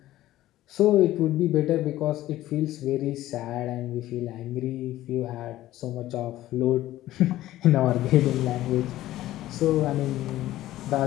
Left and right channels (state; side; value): quieter; right; 14.9 dB